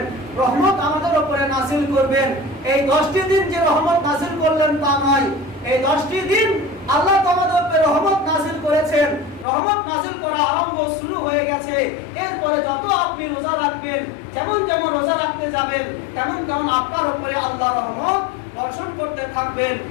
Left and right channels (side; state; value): right; drops out; at 9.5 s